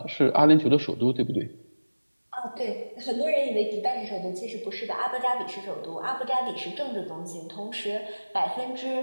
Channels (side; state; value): both; inverted; correlation -1.00